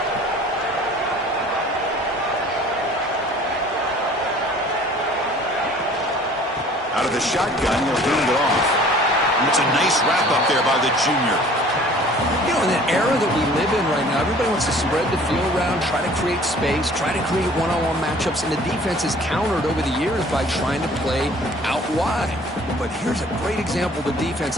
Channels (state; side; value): normal; both; correlation 0.50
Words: Out of the shotgun, he'll hand it off. And it's a nice wrap up there by the junior. You know, in the era that we live in right now, everybody wants to spread the field around, try to create space, try to create one-on-one matchups, and the defense is countered over the years by trying to play out wide. But here's a great example. The defense